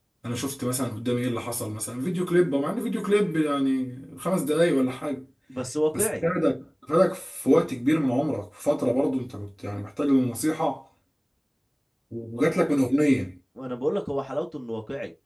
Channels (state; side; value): identical; both; correlation 1.00